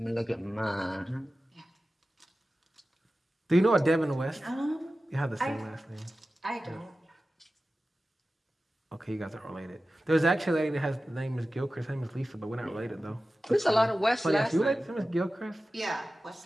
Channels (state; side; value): normal; both; correlation 0.95